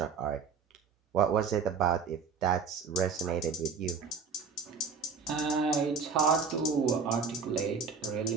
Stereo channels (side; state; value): left; quieter; 5.6 dB